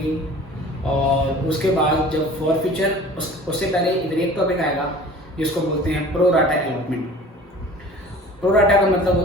और उसके बाद जब फॉर फ्यूचर उससे पहले इधर एक टॉपिक आएगा जिसको बोलते हैं pro rata allotment. Pro rata का मतलब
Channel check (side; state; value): both; normal; correlation 0.44